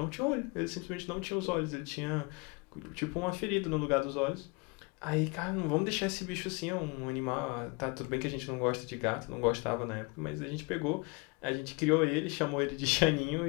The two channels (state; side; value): quieter; right; 29.1 dB